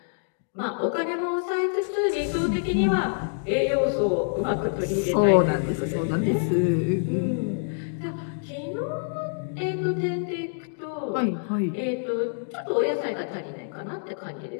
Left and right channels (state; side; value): silent; right; digital silence